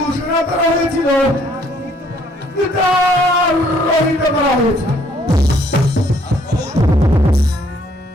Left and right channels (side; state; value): both; normal; correlation 0.64